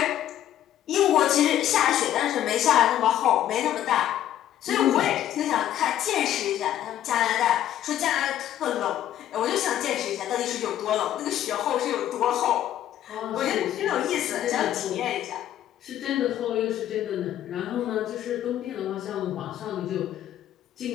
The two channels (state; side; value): quieter; right; 11.8 dB